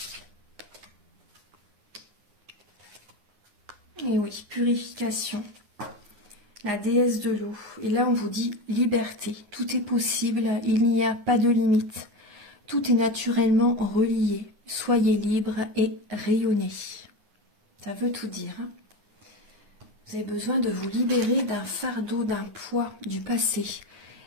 Et oui, purification. La déesse de l'eau. Et là, on vous dit liberté. Tout est possible, il n'y a pas de limite. Tout est naturellement relié. Soyez libre et rayonnez. Ça veut tout dire. Hein. Vous avez besoin de vous libérer d'un fardeau, d'un poids du passé.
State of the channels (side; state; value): left; late; 9.7 ms